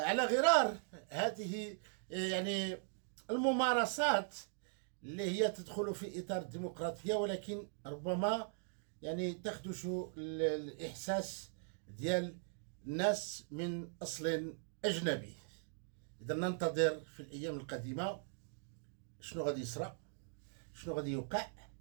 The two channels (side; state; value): left; silent; digital silence